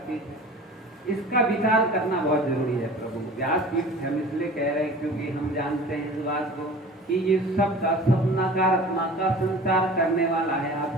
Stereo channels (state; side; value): normal; both; correlation 0.41